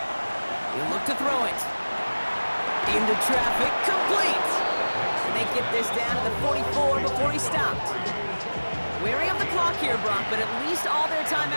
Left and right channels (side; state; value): both; inverted; correlation -1.00